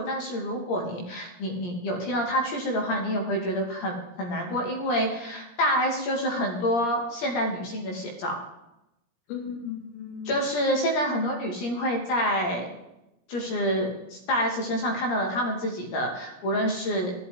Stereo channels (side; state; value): right; late; 17 ms